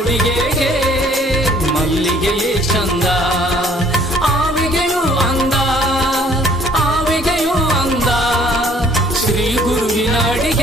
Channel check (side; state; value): both; normal; correlation 0.59